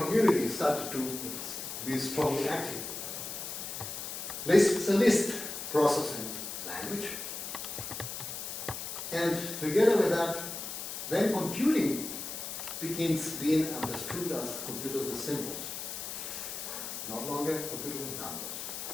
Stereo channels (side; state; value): left; noise; hiss, 6 dB below the sound